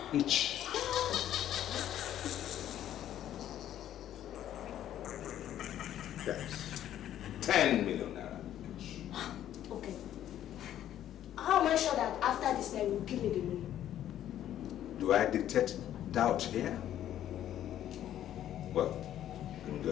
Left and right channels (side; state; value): right; quieter; 11.5 dB